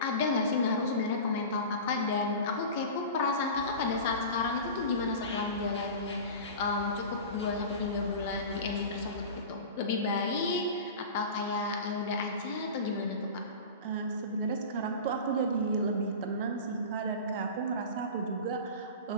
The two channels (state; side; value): inverted; both; correlation -0.32